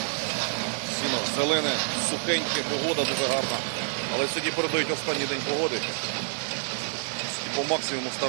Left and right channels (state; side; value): silent; left; digital silence